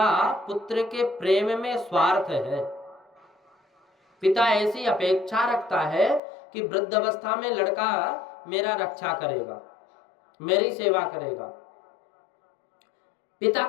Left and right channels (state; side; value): drops out; right; at 6.2 s